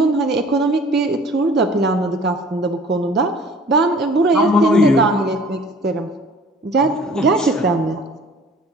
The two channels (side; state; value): both; normal; correlation 0.50